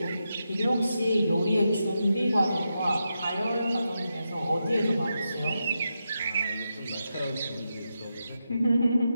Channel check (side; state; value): both; inverted; correlation -0.87